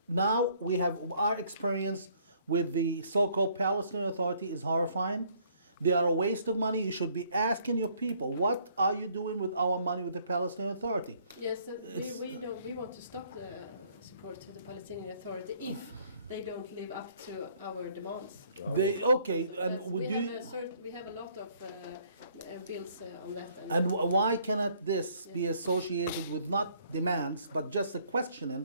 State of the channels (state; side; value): inverted; both; correlation -0.63